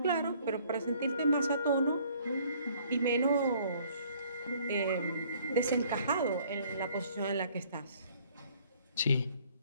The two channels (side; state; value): both; inverted; correlation -0.59